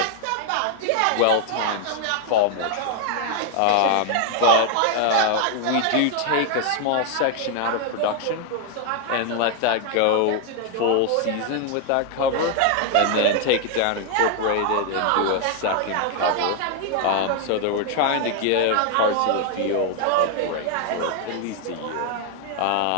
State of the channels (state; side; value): different; both; correlation 0.00